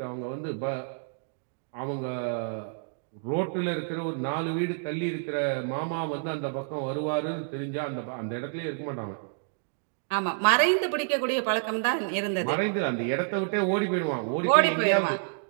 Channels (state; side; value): silent; left; digital silence